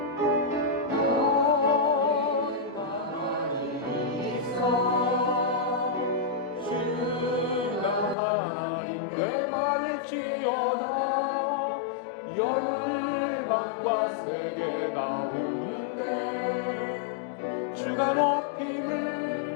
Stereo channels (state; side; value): drops out; right; at 8.2 s